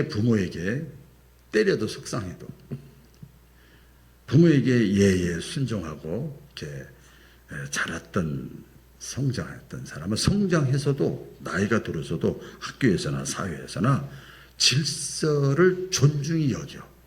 부모에게 때려도 속상해도 부모에게 예예 순종하고 이렇게 자랐던 성장했던 사람은 성장해서도 나이가 들어서도 학교에서나 사회에서나 질서를 존중히 여겨.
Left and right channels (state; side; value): identical; both; correlation 1.00